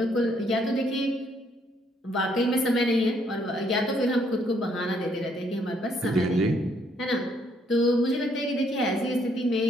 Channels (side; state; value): both; normal; correlation 0.69